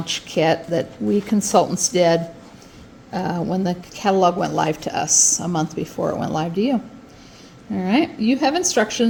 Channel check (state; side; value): identical; both; correlation 1.00